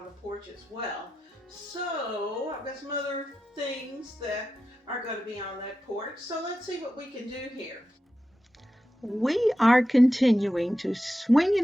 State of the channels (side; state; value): both; normal; correlation 0.91